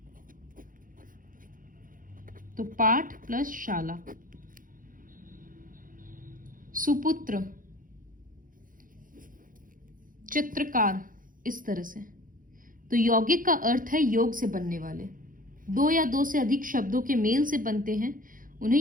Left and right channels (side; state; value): left; late; 0.40 ms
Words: तो पाठ प्लस शाला। सुपुत्र, चित्रकार, इस तरह से। तो यौगिक का अर्थ है योग से बनने वाले। 2 या 2 से अधिक शब्दों के मेल से बनते हैं,